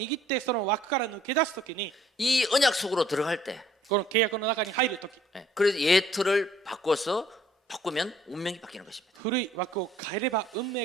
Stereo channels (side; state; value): both; normal; correlation 0.60